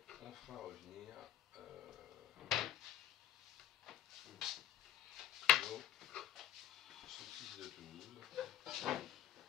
on fera revenir nos saucisses de Toulouse. Voilà.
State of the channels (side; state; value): right; quieter; 11.5 dB